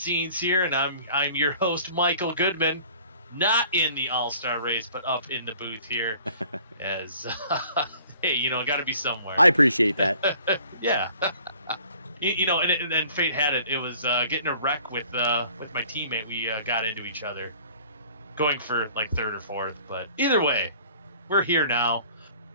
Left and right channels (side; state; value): both; inverted; correlation -0.51